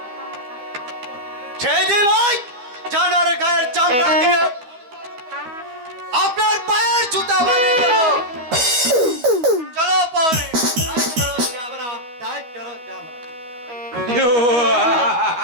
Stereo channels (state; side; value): late; left; 12 ms